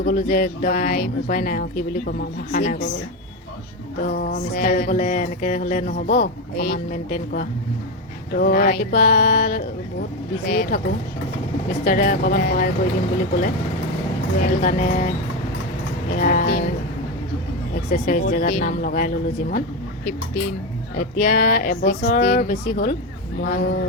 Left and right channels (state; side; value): normal; both; correlation 0.14